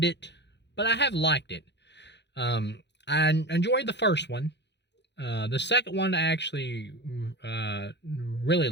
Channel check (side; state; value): right; late; 0.50 ms